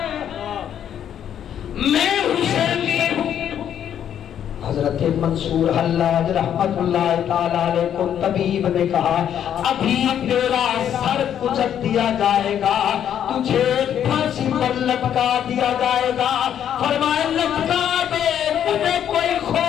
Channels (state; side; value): quieter; right; 9.6 dB